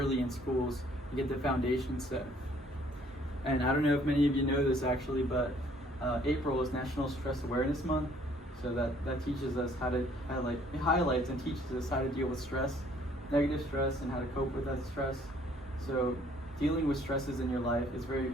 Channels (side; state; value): both; normal; correlation 0.61